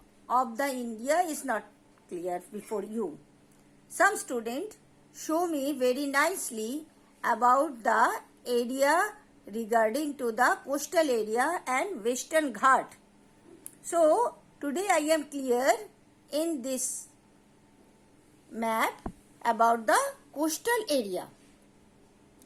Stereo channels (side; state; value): both; identical; correlation 1.00